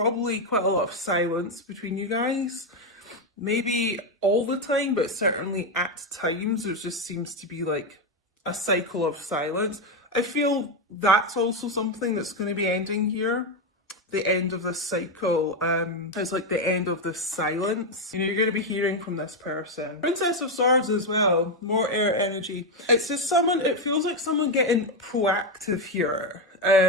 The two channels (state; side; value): normal; both; correlation 0.06